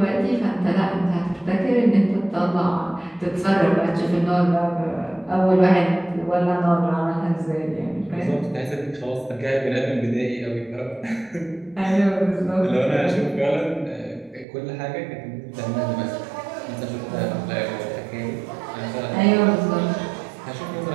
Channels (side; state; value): left; drops out; at 14.5 s